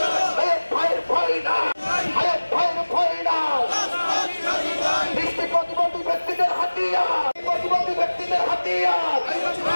ভাইয়ের ভয় না, ভাইয়ের ভয় না। দৃষ্টি প্রতিবন্ধী ব্যক্তিদের হাতিয়ার, প্রতিবন্ধী ব্যক্তিদের হাতিয়ার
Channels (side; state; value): both; inverted; correlation -1.00